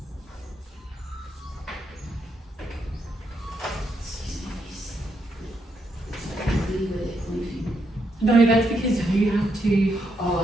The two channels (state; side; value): normal; both; correlation 0.79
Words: No, that's because you have to